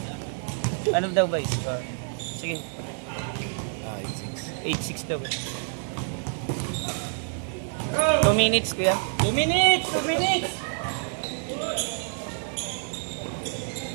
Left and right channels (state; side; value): silent; left; 60 dB below the other